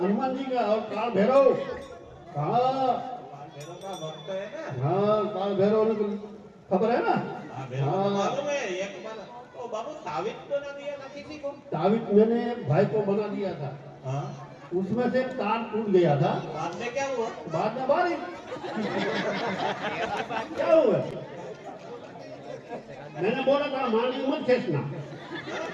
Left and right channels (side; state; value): both; identical; correlation 1.00